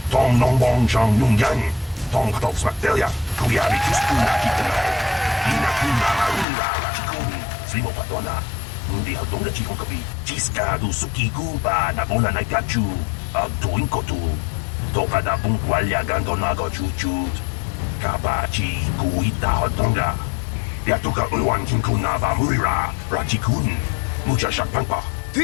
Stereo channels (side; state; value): right; drops out; at 6.5 s